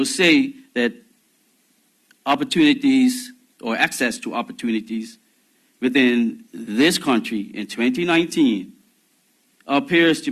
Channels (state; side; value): identical; both; correlation 1.00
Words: say that opportunities or access to opportunities within this country in 2019 appears to